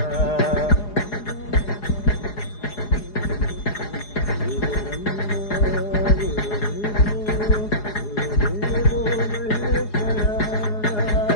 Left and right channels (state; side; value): late; right; 4.8 ms